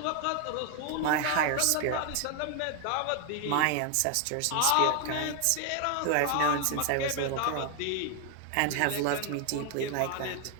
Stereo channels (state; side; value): different; both; correlation 0.00